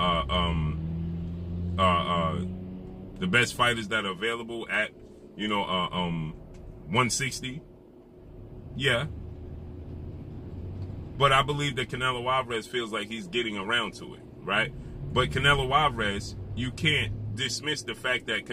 the best fighters that are available at 160. Yeah. But I believe that Canelo Alvarez feels like he's getting around to it, right? But Canelo Alvarez, you can't dismiss the fact that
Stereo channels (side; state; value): both; identical; correlation 1.00